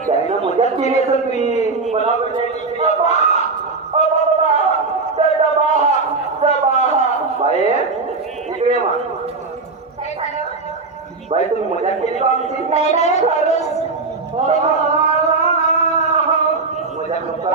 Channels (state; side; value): quieter; left; 4.0 dB